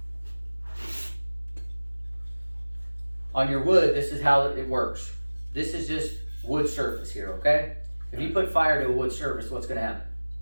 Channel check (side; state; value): both; inverted; correlation -1.00